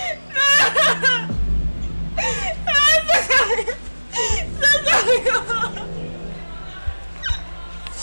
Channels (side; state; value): both; inverted; correlation -1.00